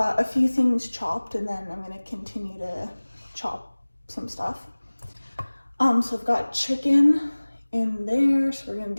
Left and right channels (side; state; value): both; inverted; correlation -1.00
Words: a few things chopped, and then I'm gonna continue to chop some stuff. So I've got chicken in there, so we're gonna